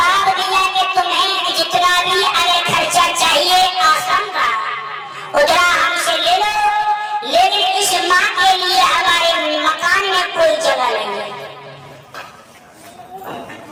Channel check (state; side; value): identical; both; correlation 1.00